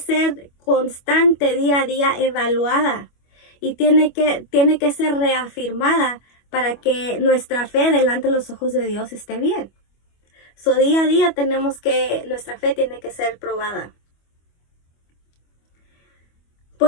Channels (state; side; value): late; right; 25 ms